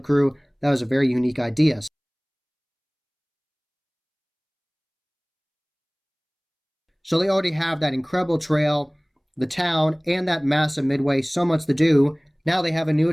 crew. That was a very unique idea. So they already have that incredible trail, the town, and that massive Midway. So much to do. Now they have a new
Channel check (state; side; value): identical; both; correlation 1.00